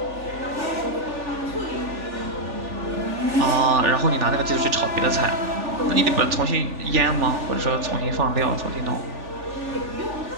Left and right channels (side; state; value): left; late; 3.4 ms